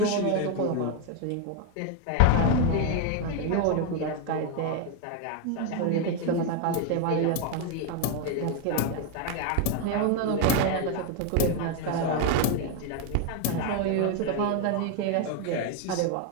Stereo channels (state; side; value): different; both; correlation 0.01